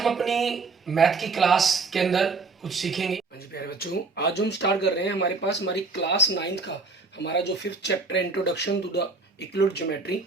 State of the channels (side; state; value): left; quieter; 3.9 dB